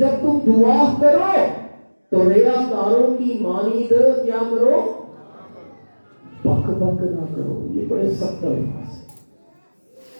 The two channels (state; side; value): inverted; both; correlation -1.00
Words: تم دعا کرو تو ریاکاروں کی مانند کیا کرو، بک بک نہ کرو۔ یہ بڑے سخت الفاظ ہیں۔